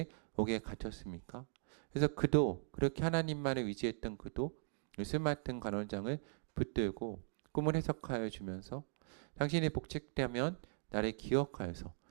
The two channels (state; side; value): silent; left; digital silence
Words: 옥에 갇혔습니까? 그래서 그도 그렇게 하나님만을 의지했던 그도 술 맡은 간원장을 붙들고 꿈을 해석하여 주면서 당신이 복직되면 나를 기억하여서